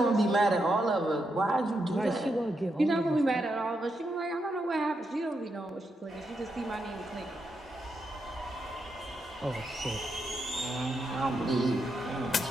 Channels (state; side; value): normal; both; correlation 0.83